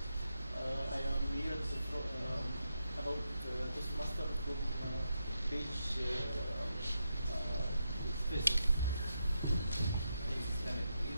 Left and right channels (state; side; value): inverted; both; correlation -0.84